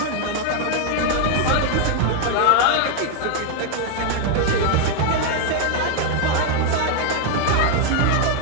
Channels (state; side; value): different; both; correlation 0.00